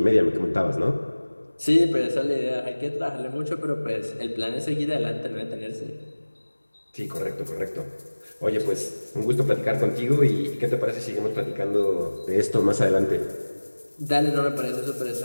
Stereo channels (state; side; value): inverted; both; correlation -1.00